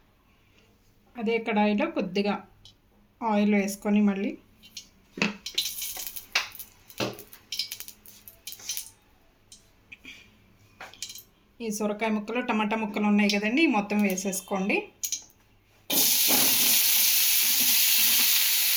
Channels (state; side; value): identical; both; correlation 1.00